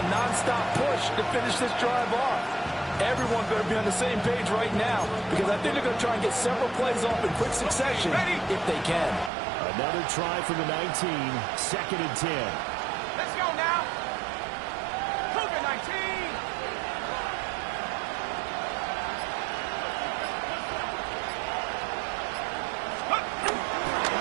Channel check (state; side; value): drops out; left; at 9.3 s